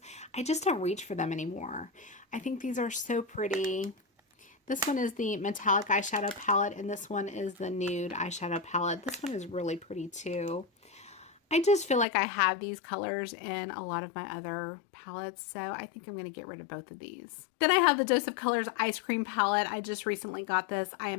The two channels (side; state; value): right; drops out; at 12.1 s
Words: I just don't reach for them anymore. I think these are so pretty. This one is the Metallic Eyeshadow Palette, and this one is the Nude Eyeshadow Palette. This one is really pretty too. I just feel like I have these colors in a lot of my other palettes, so I think I'm going to get rid of both of these. Then I have the Dose of Colors Ice Cream Palette. I just recently got this. I